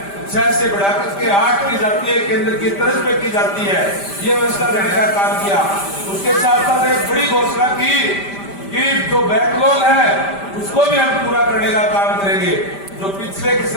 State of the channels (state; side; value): late; right; 5.1 ms